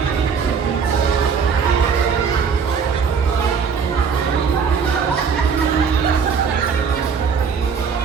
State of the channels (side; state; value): left; quieter; 6.1 dB